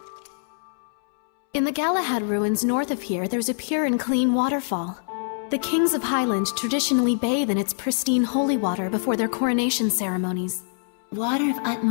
In the Galahad ruins north of here, there's a pure and clean waterfall. The kings of Highland traditionally bathe in its pristine holy water before their coronation ceremonies. Water of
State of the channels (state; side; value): silent; right; 62 dB below the other